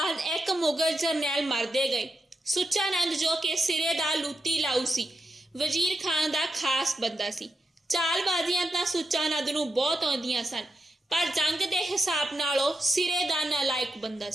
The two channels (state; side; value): normal; both; correlation 0.87